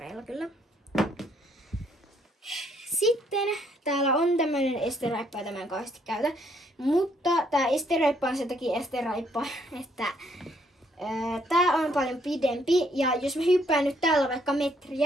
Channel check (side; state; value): both; normal; correlation 0.68